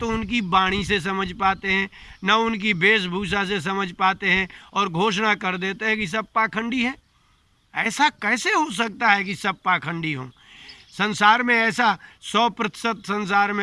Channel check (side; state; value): both; identical; correlation 1.00